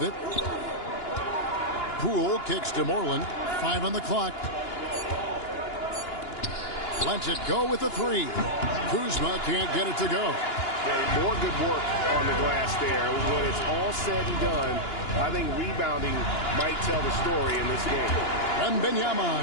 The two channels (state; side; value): late; right; 2.9 ms